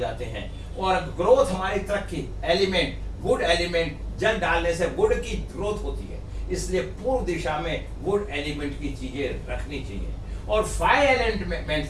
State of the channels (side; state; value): both; identical; correlation 1.00